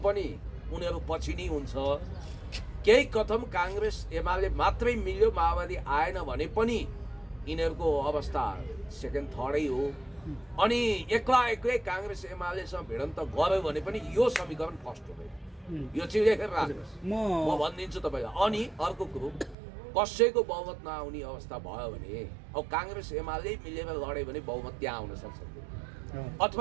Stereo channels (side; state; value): left; drops out; at 19.6 s